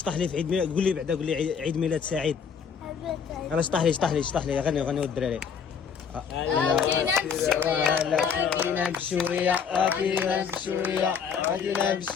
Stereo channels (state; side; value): quieter; right; 6.7 dB